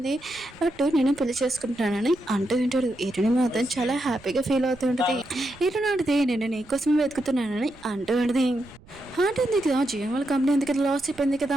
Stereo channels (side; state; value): right; noise; rumble, 24 dB below the sound